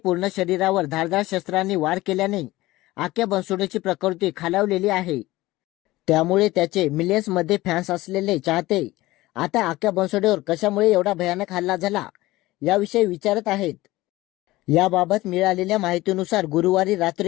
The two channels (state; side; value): quieter; right; 18.3 dB